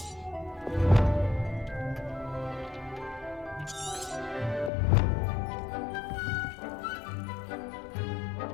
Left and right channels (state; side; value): drops out; right; at 4.7 s